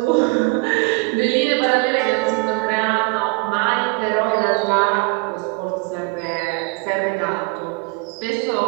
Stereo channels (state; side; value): quieter; left; 28.3 dB